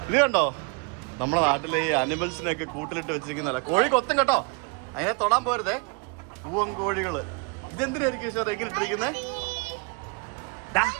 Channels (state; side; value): quieter; left; 33.1 dB